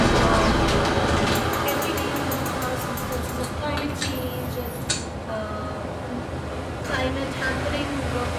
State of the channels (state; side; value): identical; both; correlation 1.00